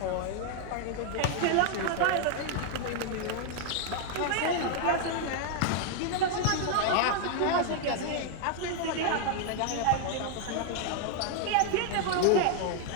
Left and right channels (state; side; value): different; both; correlation 0.00